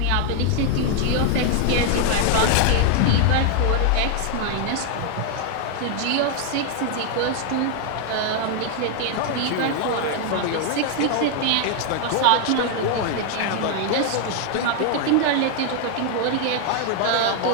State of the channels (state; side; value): different; both; correlation 0.00